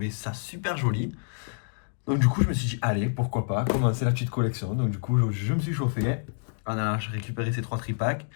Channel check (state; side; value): silent; right; digital silence